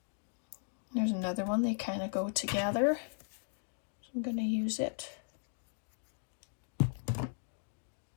There's another one, they kind of go together. So I'm going to use it.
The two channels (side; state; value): right; silent; digital silence